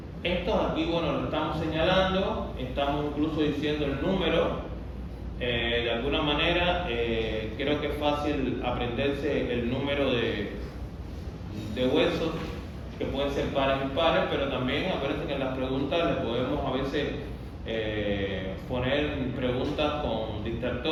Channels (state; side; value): identical; both; correlation 1.00